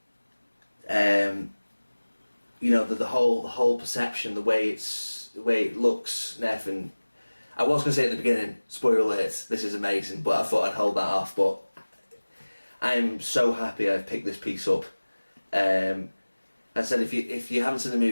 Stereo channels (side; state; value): both; inverted; correlation -1.00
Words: you know, the whole perception, the way it looks and everything. I was going to say at the beginning, spoiler alert, this is amazing, but I thought I'd hold that off. But I'm so happy I've picked this piece up. I said, if you haven't seen the